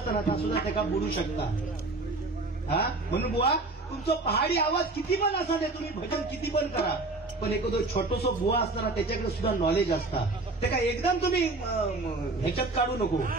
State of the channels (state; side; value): quieter; left; 3.3 dB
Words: त्या सुद्धा त्याला बुडू शकता. हा म्हणून बुवा तुमचं पहाडी आवाज किती पण असा दे, तुम्ही भजन किती पण करा, पण एखादं छोटसो बुवा असताना त्याच्याकडे सुद्धा नॉलेज असता. ते काय एकदम तुम्ही ह्याच्यात काढू नको,